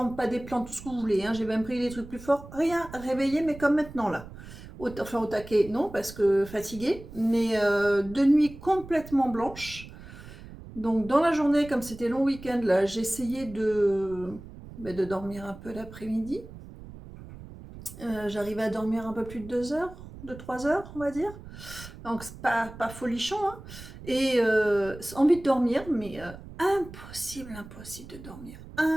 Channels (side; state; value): right; noise; rumble, 15 dB below the sound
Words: pas des plantes, tout ce que vous voulez, hein, j'ai même pris des trucs plus forts, rien réveillé, mais comme maintenant là. Enfin au taquet, non, parce que fatiguée, mais de nuit complètement blanche. Donc dans la journée, comme c'était long week-end, là, j'ai essayé de dormir un peu l'après-midi. J'arrivais à dormir un peu plus de 2 heures, de 3 heures, on va dire. Donc c'est pas folichon, hein. Et envie de dormir, mais impossible de dormir.